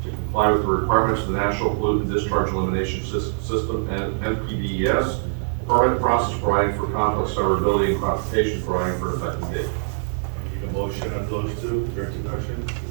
to comply with the requirements of the National Pollutant Discharge Elimination System, and NPDES, permit process providing for conflict severability and classification providing for effective date. I need a motion on those two for introduction.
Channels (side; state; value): left; silent; digital silence